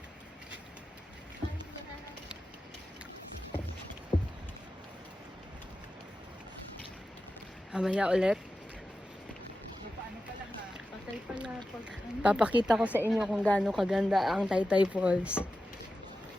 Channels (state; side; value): normal; both; correlation 0.92